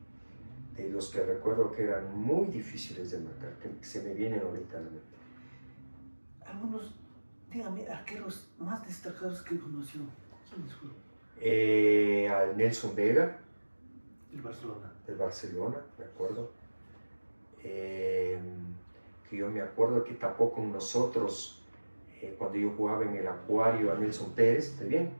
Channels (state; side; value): inverted; both; correlation -1.00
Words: De los que recuerdo que eran muy difíciles de marcar, que se me vienen ahorita a la mente. Algunos, dígame, arqueros más destacados que conoció. ¿Quiénes fueron? Al Nelson Vega, El Barcelona. del Barcelona, me acuerdo. Que yo me acuerdo que tapó con nosotros cuando yo jugaba en el Acuario a Nelson Pérez, ¿está bien?